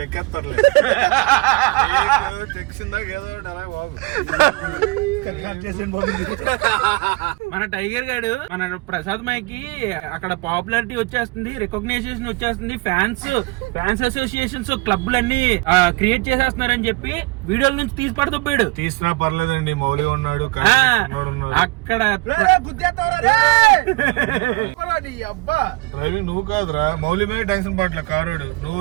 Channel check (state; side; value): quieter; left; 24.9 dB